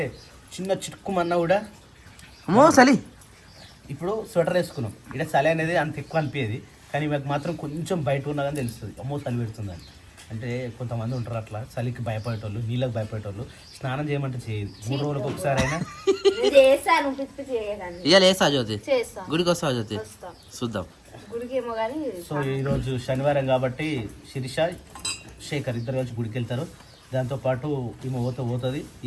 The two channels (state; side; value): identical; both; correlation 1.00